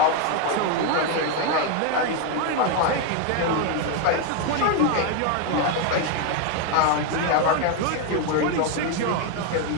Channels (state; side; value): different; both; correlation 0.01